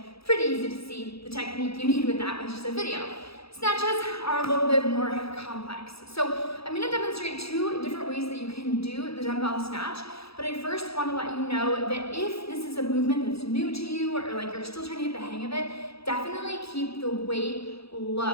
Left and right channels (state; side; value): late; right; 0.77 ms